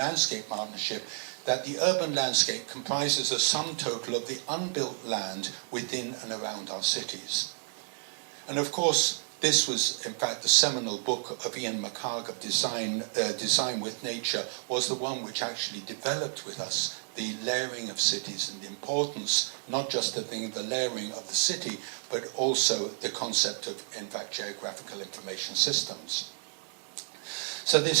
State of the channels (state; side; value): silent; left; digital silence